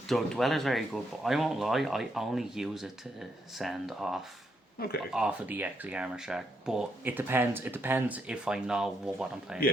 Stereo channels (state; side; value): normal; both; correlation 0.78